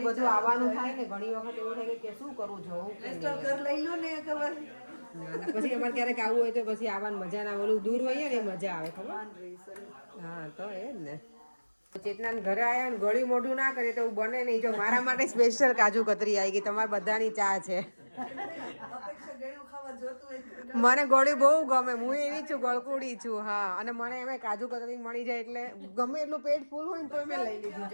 બધું આવવાનું થાય ને ઘણી વખત એવું થાય કે શું કરવું જવું કે નહીં. તો ઘર લઈ લો ને ખબર અને પછી અમારે ક્યારેક આવવું હોય તો પછી આવવાની મજા ના. ઓલું દૂર હોઈએ ને એ મજા આવે ખબર. હા તો એ જ ને. ચેતના ઘરે આવ્યા ને ગળ્યું મોઢું ના કરે તો એવું બને નહીં. જો મારા માટે સ્પેશિયલ કાજુ કતરી આવી ગઈ. તમારા બધાની ચા છે. અપેક્ષા ગળ્યું ખાવા જોતું હોય. મને ગળ્યું બહુ ગમે. હું એવી છું ગળકુડી છું. હા અને મને એમાં કાજુ કતરી મળી જાય એટલે ગમે એટલું પેટ ફૂલ હોય ને તો મેં લઈ લીધું.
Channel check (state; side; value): inverted; both; correlation -1.00